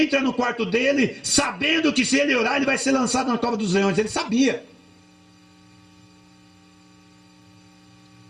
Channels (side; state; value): both; identical; correlation 1.00